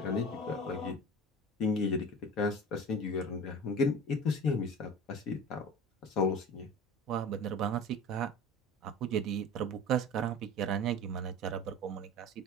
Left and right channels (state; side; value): normal; both; correlation 0.37